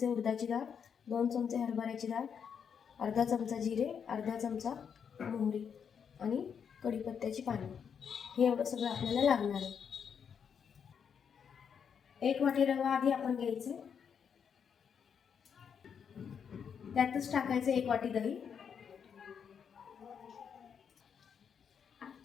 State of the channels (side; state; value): right; quieter; 7.2 dB